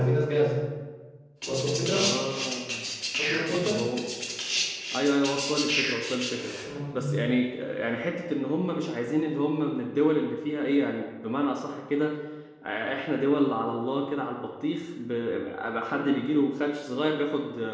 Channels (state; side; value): identical; both; correlation 1.00